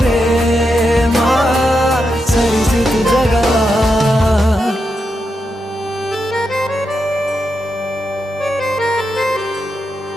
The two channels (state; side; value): normal; both; correlation 0.85